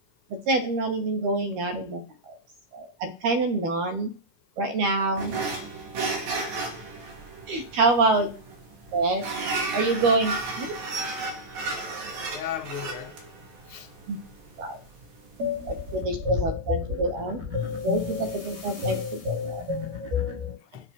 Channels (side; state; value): left; late; 13 ms